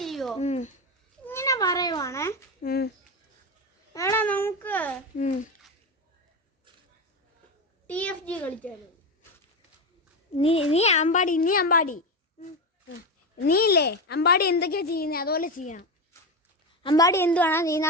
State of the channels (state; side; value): normal; both; correlation 0.16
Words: ഇങ്ങനെ പറയുവാണ്. എടാ നമുക്ക് TFG കളിച്ചാലോ? നീ അമ്പാടി. നീ ഇല്ലേ അമ്പാടി എന്തൊക്കെയാ ചെയ്യുന്നത് അതുപോലെ ചെയ്യണം. അമ്പാടി എന്തുവാണോ ചെയ്യുന്നത്